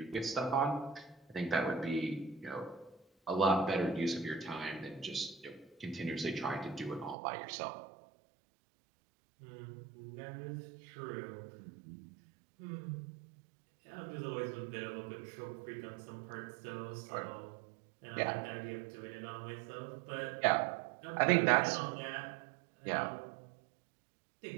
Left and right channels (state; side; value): drops out; left; at 7.2 s